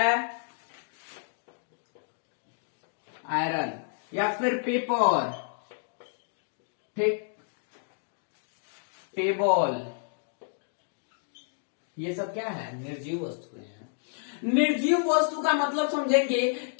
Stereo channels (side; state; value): right; silent; digital silence